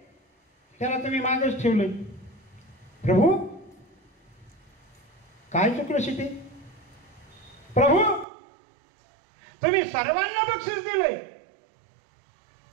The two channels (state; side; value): drops out; left; at 8.2 s